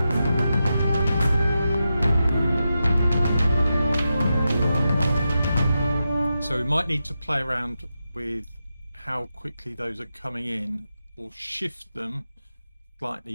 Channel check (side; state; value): both; inverted; correlation -0.88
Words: so we might need to play around with how quickly those are coming in, or shift them